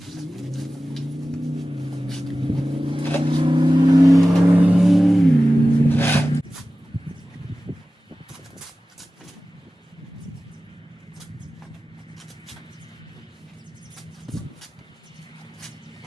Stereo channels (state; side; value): normal; both; correlation 0.96